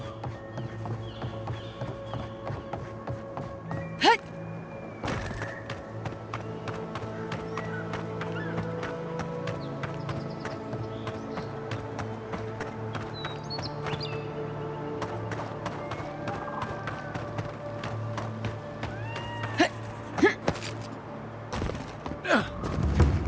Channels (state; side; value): identical; both; correlation 1.00